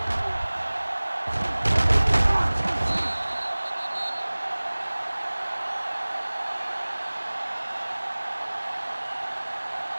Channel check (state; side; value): inverted; both; correlation -1.00